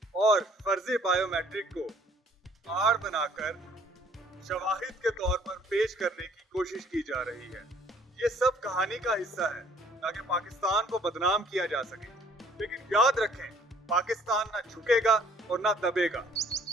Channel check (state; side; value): normal; both; correlation 0.59